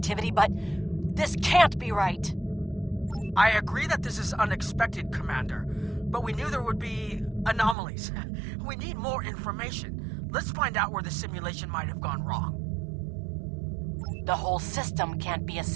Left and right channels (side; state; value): left; drops out; at 7.8 s